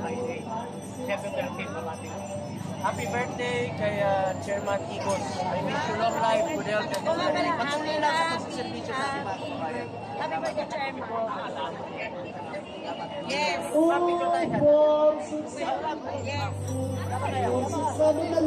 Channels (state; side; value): identical; both; correlation 1.00